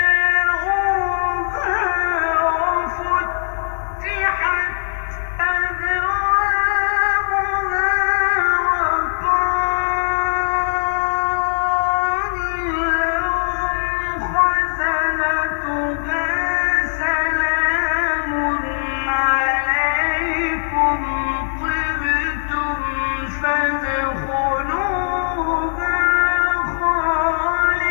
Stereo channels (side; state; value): right; silent; digital silence